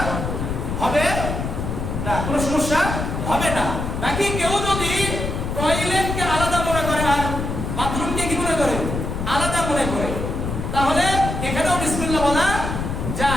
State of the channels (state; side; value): noise; left; rumble, 3 dB below the sound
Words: হবে না, কোনো সমস্যা হবে না। বাকি কেউ যদি টয়লেটকে আলাদা মনে করে আর বাথরুমকে কি মনে করে? আলাদা মনে করে, তাহলে এখানেও বিসমিল্লাহ বলা